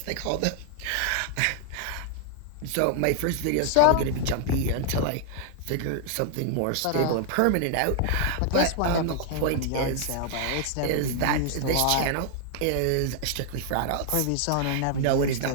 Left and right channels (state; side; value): different; both; correlation 0.00